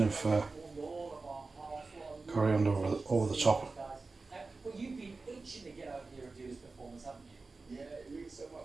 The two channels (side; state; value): left; quieter; 3.8 dB